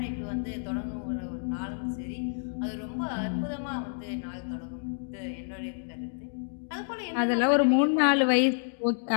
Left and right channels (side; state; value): right; silent; digital silence